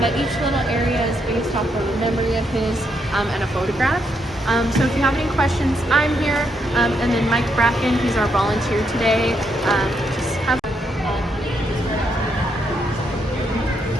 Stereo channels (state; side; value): normal; both; correlation 0.77